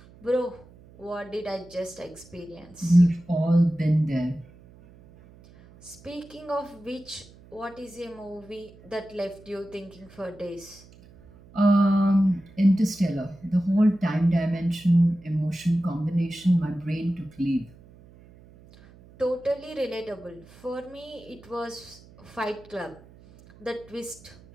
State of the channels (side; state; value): right; noise; hum, 24 dB below the sound